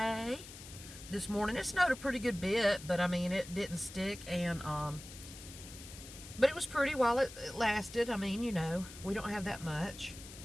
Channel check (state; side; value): noise; left; hiss, 15 dB below the sound